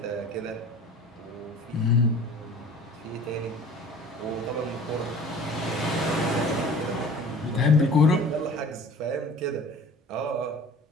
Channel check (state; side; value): normal; both; correlation 0.45